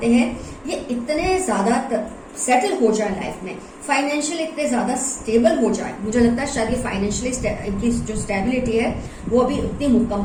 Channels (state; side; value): identical; both; correlation 1.00